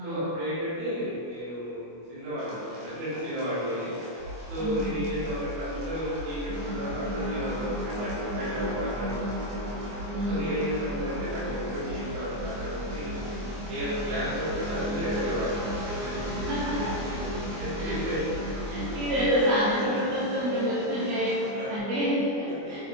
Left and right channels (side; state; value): left; late; 24 ms